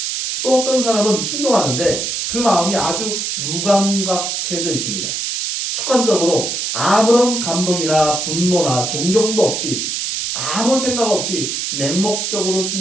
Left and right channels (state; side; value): noise; right; hiss, 2 dB below the sound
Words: 또 어떤 사람은 순종하는데 그 마음이 아주 무감각해져 있습니다. 습관적으로 아무런 감동이나 분노나 존경도 없이 아무 생각 없이 맹목적으로